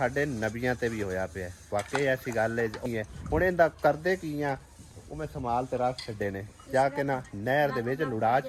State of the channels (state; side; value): identical; both; correlation 1.00